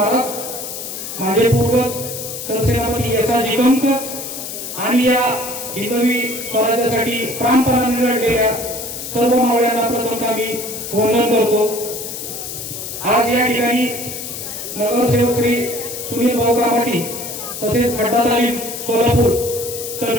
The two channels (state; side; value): noise; left; hiss, 8 dB below the sound